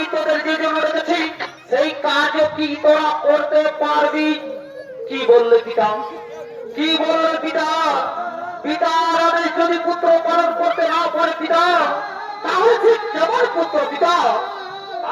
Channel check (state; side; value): identical; both; correlation 1.00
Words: তোদের যে জন্য রেখেছি সেই কাজও কি তোরা করতে পারবি? কি বললে পিতা? কি বললে পিতা? পিতার আদেশ যদি পুত্র পালন করতে না পারে পিতা, তাহলে ঠিক কেমন পুত্র পিতা?